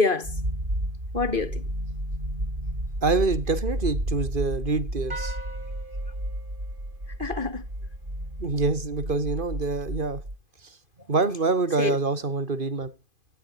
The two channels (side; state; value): left; late; 2.5 ms